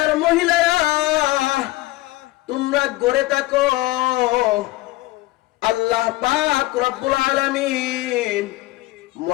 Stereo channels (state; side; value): quieter; right; 19.1 dB